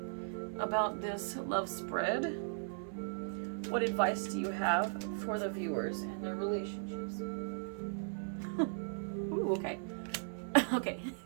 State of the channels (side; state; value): left; silent; 53 dB below the other